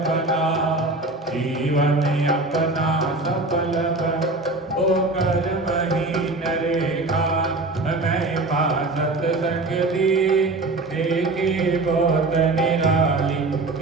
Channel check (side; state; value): left; quieter; 3.1 dB